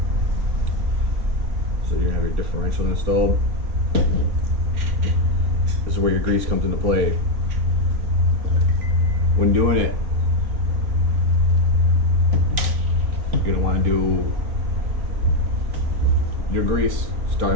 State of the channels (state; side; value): late; left; 3.5 ms